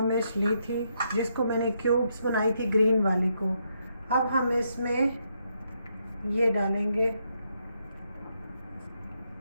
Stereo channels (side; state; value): both; inverted; correlation -0.78